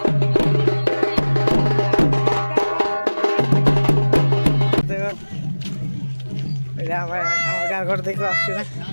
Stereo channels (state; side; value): inverted; both; correlation -1.00